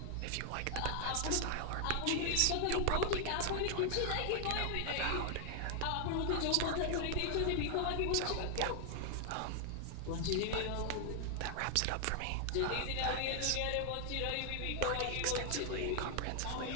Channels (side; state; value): both; different; correlation 0.00